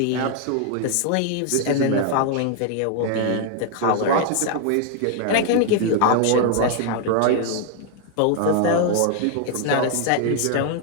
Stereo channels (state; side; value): different; both; correlation 0.00